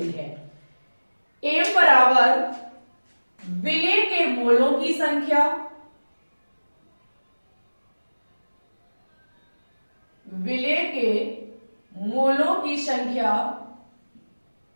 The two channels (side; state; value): both; inverted; correlation -1.00